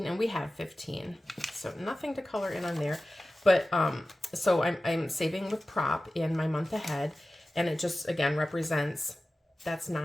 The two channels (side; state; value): both; normal; correlation 0.95